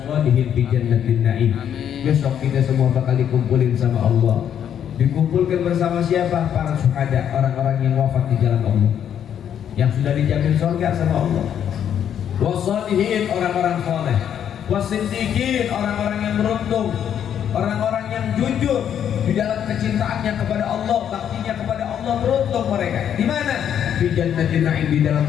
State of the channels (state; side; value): quieter; right; 9.2 dB